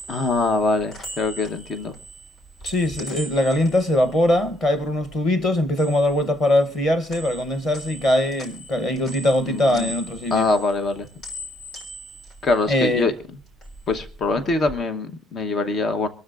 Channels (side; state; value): both; normal; correlation 0.70